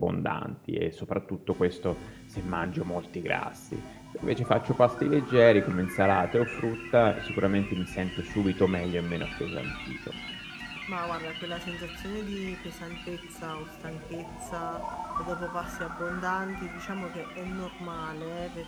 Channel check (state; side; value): identical; both; correlation 1.00